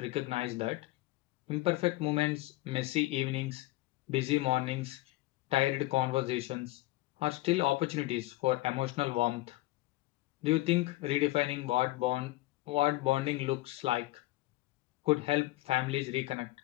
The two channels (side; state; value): right; quieter; 18.8 dB